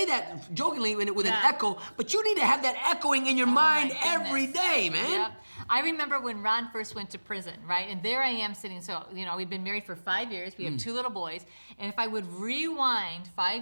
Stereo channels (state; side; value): inverted; both; correlation -1.00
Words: that jokingly with an echo, but you need to have that echoing in your mind every day, man. Yep. I remember when Ron first went to prison, right? And there I am sitting, so, you know, we'd been married for 5 years. We have 2 little boys. And if I would rewind